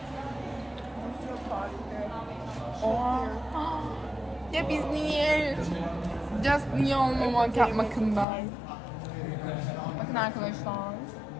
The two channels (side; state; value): right; drops out; at 8.2 s